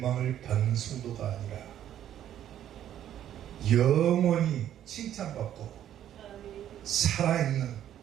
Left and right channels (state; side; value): quieter; left; 11.1 dB